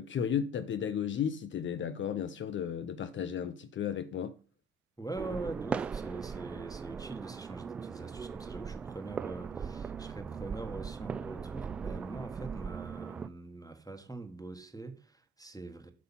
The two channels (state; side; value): normal; both; correlation 0.51